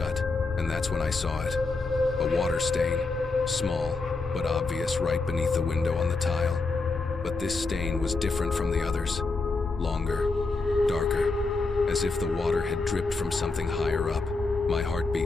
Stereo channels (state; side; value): quieter; right; 3.8 dB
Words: and that's when I saw it. A water stain, small but obvious right beneath the window on the tile. But this stain was different from the others. Longer, darker, as if the water had dripped from something higher up. My